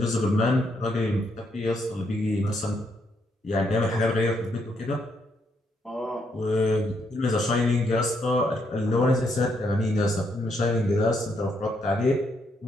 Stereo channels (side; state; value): both; normal; correlation 0.75